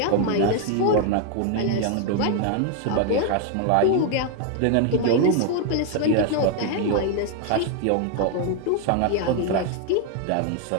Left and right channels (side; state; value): both; different; correlation 0.00